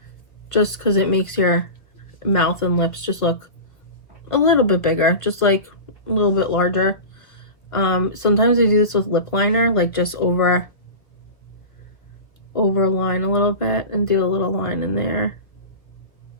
Just because it makes your mouth and lips just look a little bit bigger. Just like a little bit larger. Sometimes I do this with lip liner, like just overline a little bit and do a little line in there.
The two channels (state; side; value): late; right; 1.1 ms